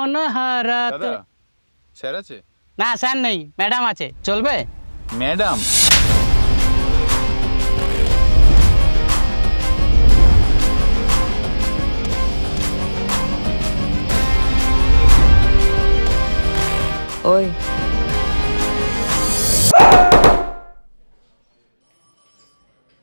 হারাতে। দাদা স্যার আছে? না স্যার নেই, ম্যাডাম আছে, চলবে? ম্যাডাম ওই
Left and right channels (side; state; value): both; inverted; correlation -1.00